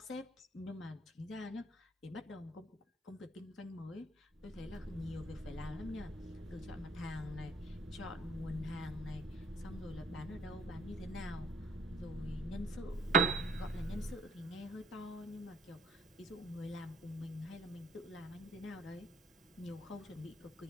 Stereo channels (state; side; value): normal; both; correlation 0.59